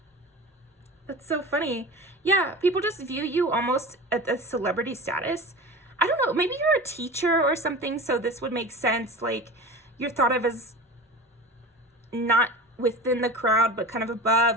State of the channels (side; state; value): both; normal; correlation 0.33